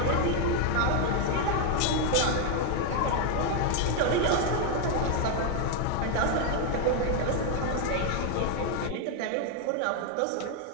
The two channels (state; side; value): different; both; correlation 0.00